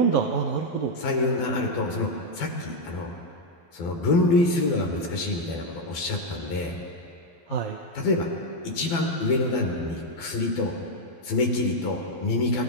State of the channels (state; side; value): late; right; 12 ms